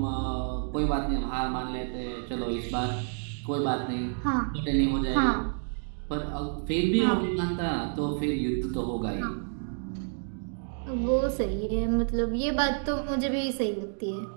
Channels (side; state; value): left; silent; 58 dB below the other